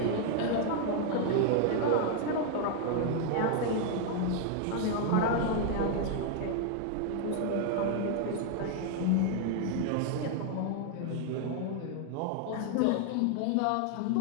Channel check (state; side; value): different; both; correlation 0.00